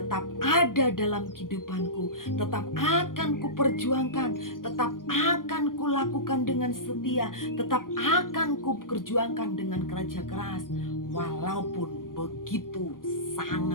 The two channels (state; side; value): late; right; 0.90 ms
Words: ada dalam kehidupanku, tetap akan kuperjuangkan, tetap akan kulakukan dengan setia, tetap akan kuperjuangkan dengan kerja keras, walaupun begitu